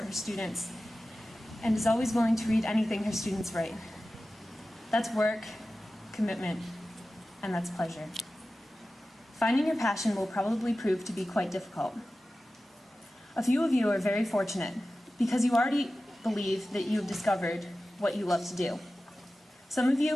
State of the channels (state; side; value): normal; both; correlation 0.95